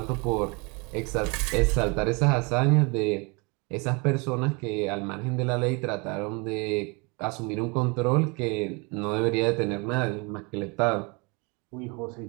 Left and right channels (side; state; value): left; quieter; 29.5 dB